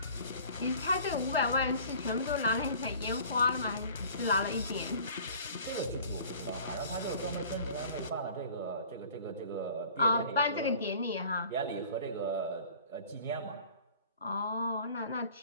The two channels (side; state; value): both; inverted; correlation -0.48